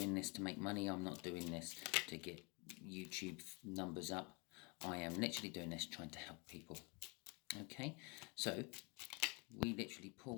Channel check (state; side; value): quieter; right; 30.6 dB